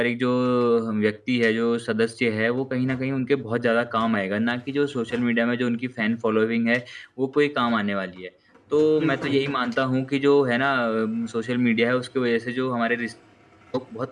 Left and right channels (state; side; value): identical; both; correlation 1.00